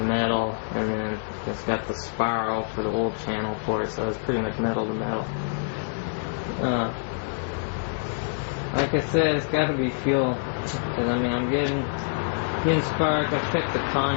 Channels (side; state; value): right; silent; digital silence